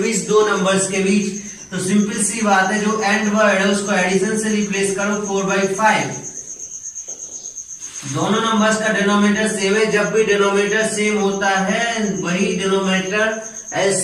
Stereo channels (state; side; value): identical; both; correlation 1.00